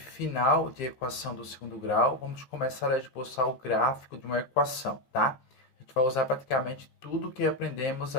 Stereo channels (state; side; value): late; right; 16 ms